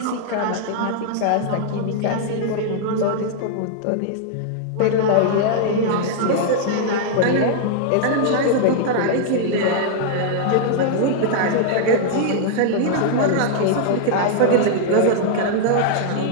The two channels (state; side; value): different; both; correlation -0.01